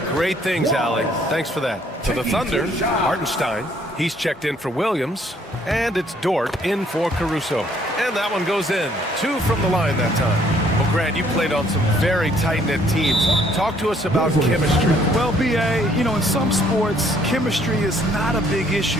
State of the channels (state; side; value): normal; both; correlation 0.64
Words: great things, Allie. Thanks for that. For the Thunder, Hartenstein. He's checked in for Williams. And it's Dort in for Caruso. And that one goes in. 2 from the line that time. Well, Grant, you played on some very tight-knit teams. Talk to us about chemistry. Well, B.A., in some sports, chemistry is not a big